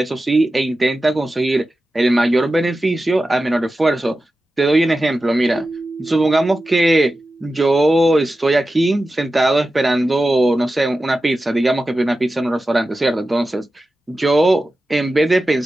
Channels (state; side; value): normal; both; correlation 0.93